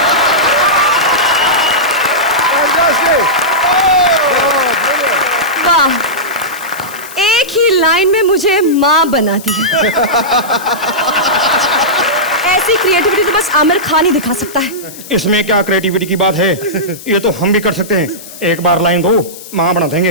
वाह, एक ही लाइन में मुझे माँ बना दी। ऐसी क्रिएटिविटी तो बस आमिर खान ही दिखा सकता है। इसमें क्या क्रिएटिविटी की बात है, ये तो हम भी कर सकते हैं। एक बार लाइन दो, माँ बना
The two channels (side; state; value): left; noise; hiss, 16 dB below the sound